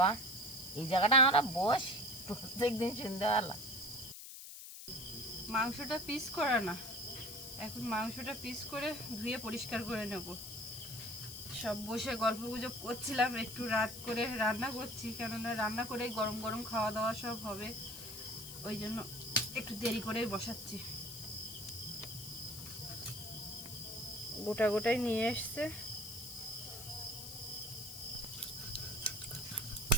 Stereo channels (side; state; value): left; noise; hiss, 11 dB below the sound